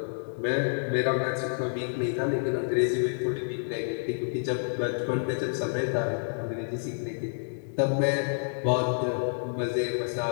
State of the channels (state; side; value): silent; right; digital silence